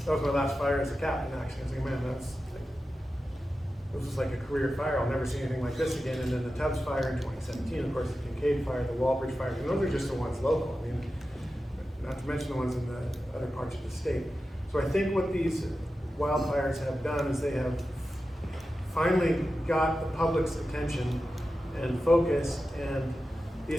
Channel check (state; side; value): normal; both; correlation 0.92